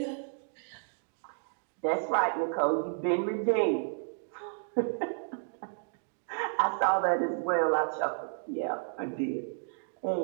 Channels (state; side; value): silent; left; digital silence